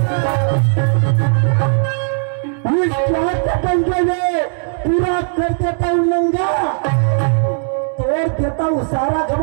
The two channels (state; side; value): silent; left; digital silence